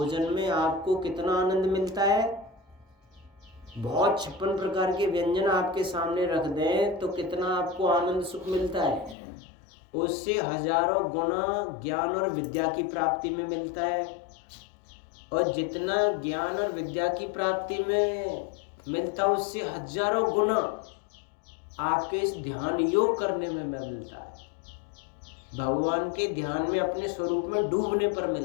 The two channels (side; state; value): right; drops out; at 9.2 s